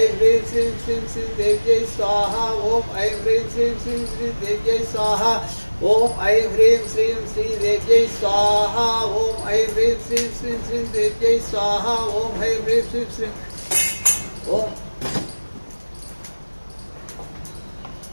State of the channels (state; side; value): inverted; both; correlation -1.00